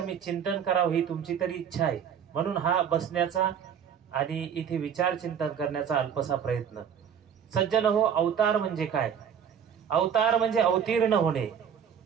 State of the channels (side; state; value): left; quieter; 8.0 dB